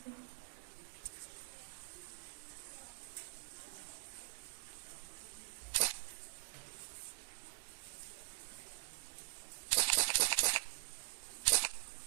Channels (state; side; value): silent; left; digital silence